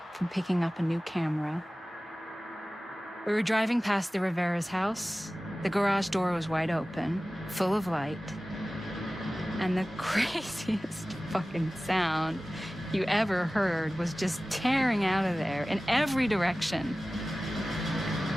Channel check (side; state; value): both; normal; correlation 0.97